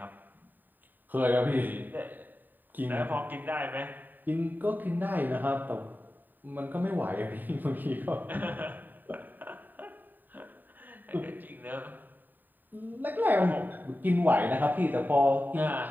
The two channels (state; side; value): late; left; 0.089 ms